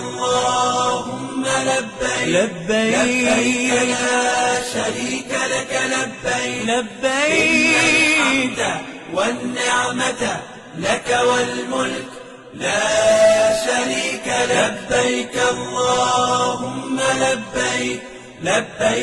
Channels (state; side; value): identical; both; correlation 1.00